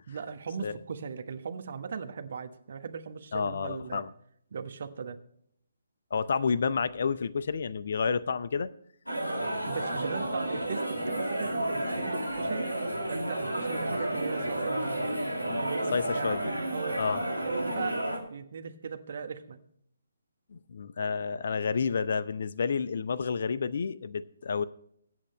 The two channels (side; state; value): both; inverted; correlation -0.84